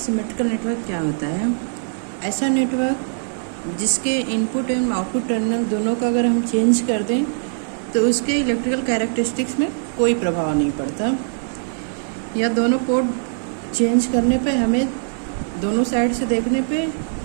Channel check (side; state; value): left; silent; digital silence